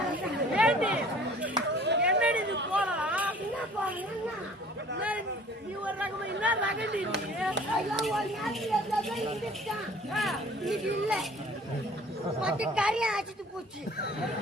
என்னடி இது போலாம் என்ன பாரு நீ ஒரு ரகமா என்ன ரகண்டி நீ ஐயோ ஒரு நாள் இது இல்ல மொத்த கறியை ஆச்சிட்டு போச்சு.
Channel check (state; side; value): normal; both; correlation 0.50